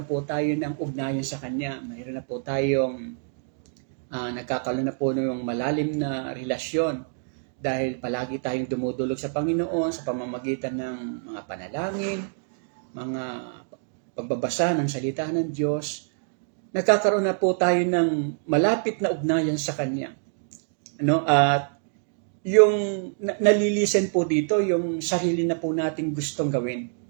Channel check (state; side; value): silent; left; digital silence